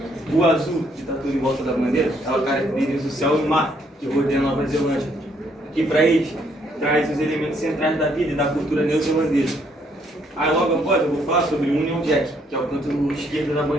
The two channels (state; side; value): normal; both; correlation 0.69